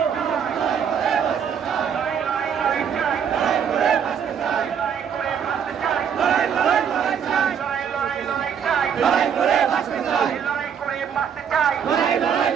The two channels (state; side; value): quieter; left; 7.7 dB